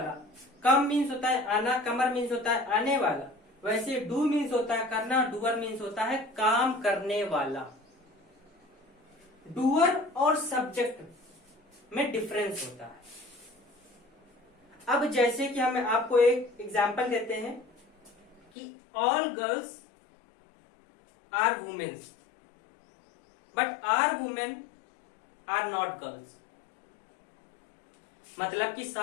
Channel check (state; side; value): drops out; right; at 18.4 s